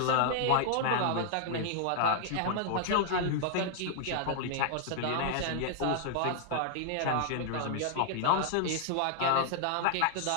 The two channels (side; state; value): both; different; correlation -0.01